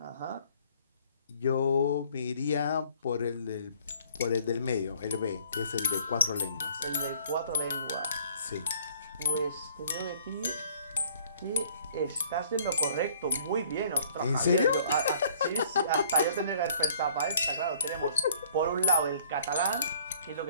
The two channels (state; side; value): inverted; both; correlation -0.58